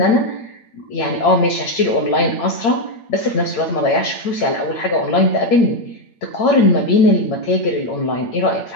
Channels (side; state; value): right; late; 8.8 ms